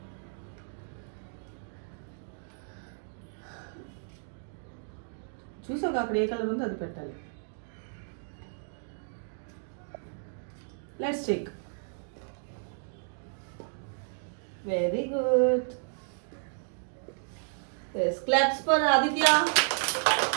చూసాక అక్కడ ఏ colour ఉందో అది పెట్టాలి. Let's check. Very good. Yes, claps for Aditya.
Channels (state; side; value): silent; left; digital silence